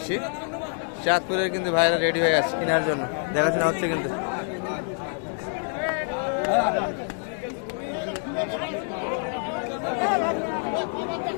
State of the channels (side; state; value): right; silent; 56 dB below the other